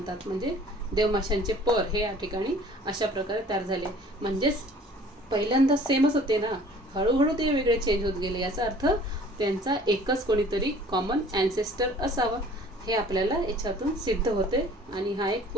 म्हणजे देवमाशांचे पर हे या ठिकाणी अशा प्रकारे तयार झाले. म्हणजेच पहिल्यांदा सेमच होते ना, हळूहळू ते वेगळे चेंज होत गेले. याचा अर्थ त्यांचा एकच कोणीतरी कॉमन ॲन्सेस्टर असावा हे आपल्याला याच्यातून सिद्ध होते आणि हा एक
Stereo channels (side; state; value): both; normal; correlation 0.51